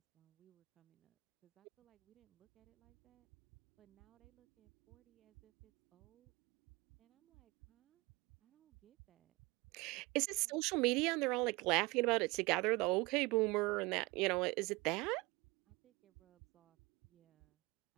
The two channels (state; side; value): quieter; left; 24.4 dB